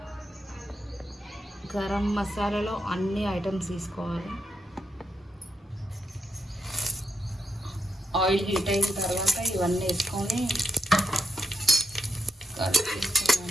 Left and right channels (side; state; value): both; normal; correlation 0.83